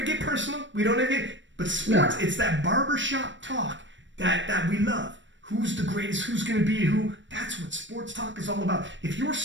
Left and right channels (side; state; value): left; late; 0.54 ms